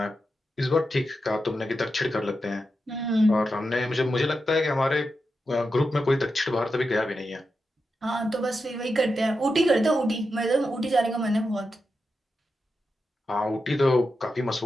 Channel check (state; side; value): normal; both; correlation 0.88